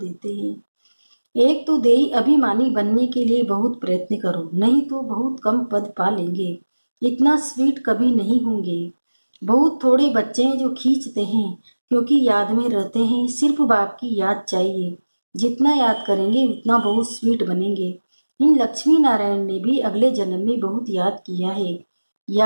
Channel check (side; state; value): both; inverted; correlation -1.00